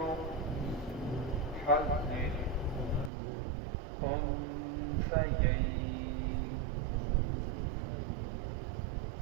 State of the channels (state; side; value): drops out; left; at 3.1 s